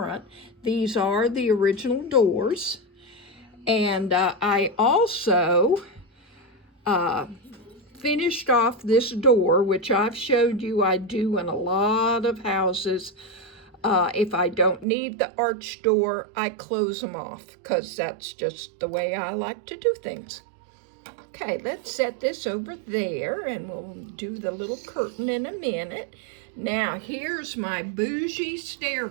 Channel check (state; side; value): drops out; left; at 14.9 s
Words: These are the original doors, and I also finished off this door, which I've showed you I do in a lot of houses. If I don't need the arch door, I close them off, because that's just the way I like to do things. Okay, let's set this over there, and we'll do the little curtain in a minute. Now, here's my bougie